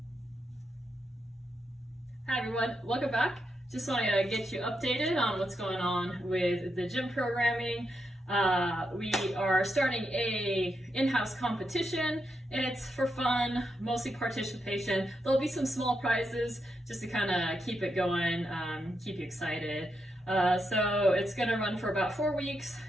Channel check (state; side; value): normal; both; correlation 0.83